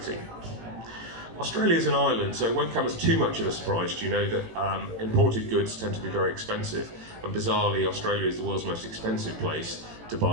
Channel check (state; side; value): late; left; 18 ms